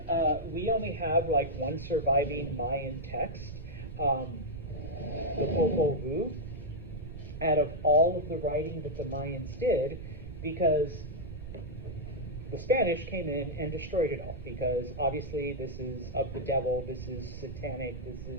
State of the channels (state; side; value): noise; right; rumble, 11 dB below the sound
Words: we only have like one surviving Mayan text, the Popol Vuh, out of all of the writing that the Mayans did, because the Spanish came in and destroyed it all, because obviously this is of the devil, this is satanic, this